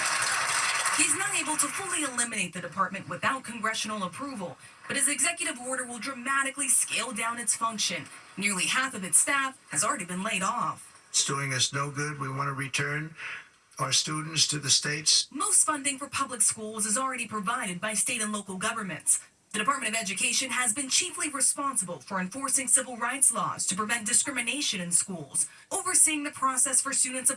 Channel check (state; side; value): identical; both; correlation 1.00